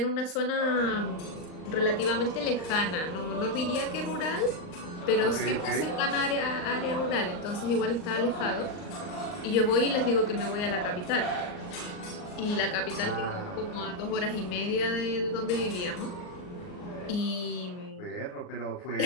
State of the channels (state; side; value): late; right; 39 ms